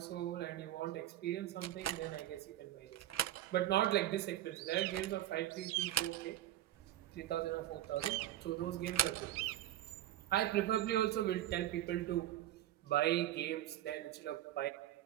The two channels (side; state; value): left; quieter; 13.4 dB